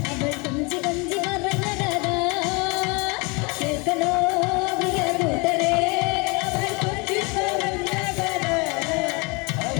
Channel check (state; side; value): quieter; right; 29.0 dB